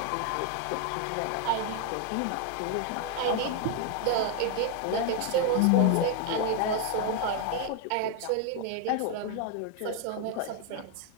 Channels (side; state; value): both; different; correlation 0.00